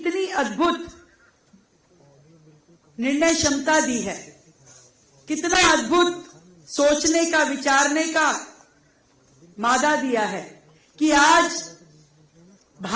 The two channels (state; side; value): identical; both; correlation 1.00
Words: अद्भुत निर्णय क्षमता दी है, कितना अद्भुत सोचने का, विचारने का मादा दिया है कि आज